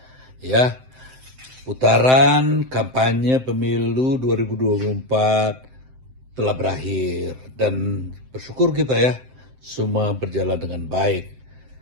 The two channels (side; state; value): left; late; 7.7 ms